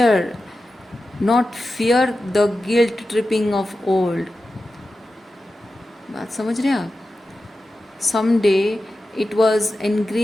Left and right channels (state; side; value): normal; both; correlation 0.93